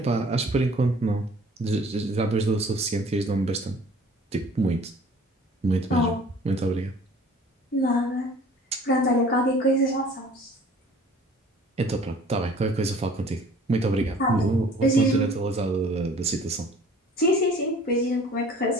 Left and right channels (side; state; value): both; normal; correlation 0.50